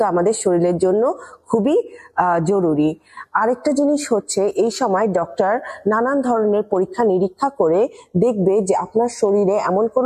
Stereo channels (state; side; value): identical; both; correlation 1.00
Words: আমাদের শরীরের জন্য খুবই জরুরি। আরেকটা জিনিস হচ্ছে, এই সময় ডক্টর নানান ধরনের পরীক্ষা নিরীক্ষা করে দেখবে যে আপনার শরীরে এমন